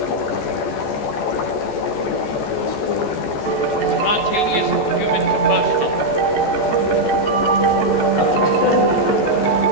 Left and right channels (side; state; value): right; late; 14 ms